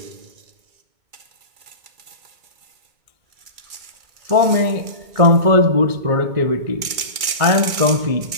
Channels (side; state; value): left; late; 2.3 ms